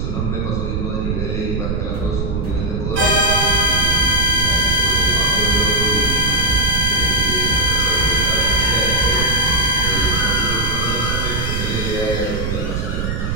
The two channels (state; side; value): noise; right; rumble, 2 dB below the sound